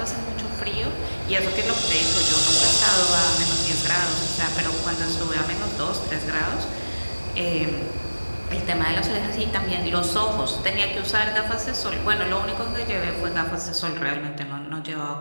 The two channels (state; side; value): inverted; both; correlation -1.00